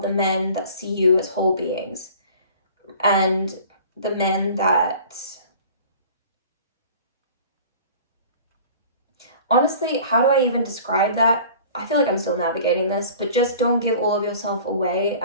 the men that see you as whole beings, and the men that, honestly, how do I even describe that? I feel like I'm still navigating this, but just don't give all of yourself away.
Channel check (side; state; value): both; inverted; correlation -0.45